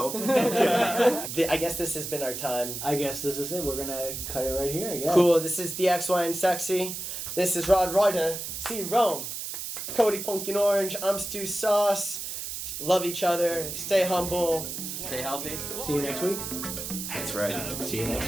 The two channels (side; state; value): right; noise; hiss, 6 dB below the sound